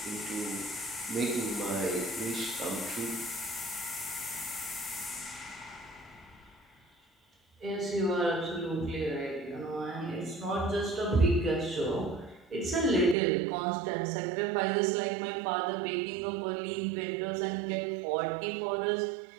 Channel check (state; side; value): drops out; left; at 13.2 s